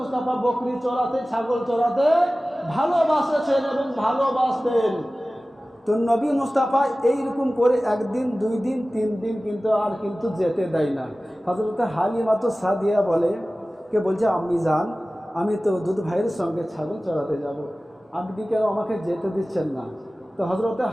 বকরি চড়াতে ছাগল চড়াতে ভালোবাসেছেন এবং ভালোবাসতেন। তো নবী মুস্তাফা এইরকম করে একদিন দুই দিন তিন দিন কিন্তু যেতে দেয় না। হযরত হালিমা তো সাদিয়া বলছে আমি যান, আমি তো দুধ ভাইয়ের সঙ্গে ছাগল চড়াতে যাব, আপনি কেন আমাকে যেতে দিচ্ছেন না? তো হযরত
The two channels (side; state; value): both; normal; correlation 0.97